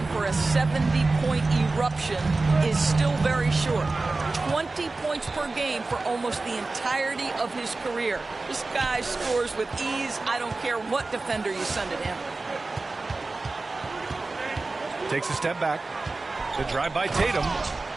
for a 70-point eruption is still very short. 20 points per game for almost the entirety of his career. This guy scores with ease. I don't care what defender you send at him. Takes a step back. The drive by Tatum.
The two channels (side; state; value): left; quieter; 3.5 dB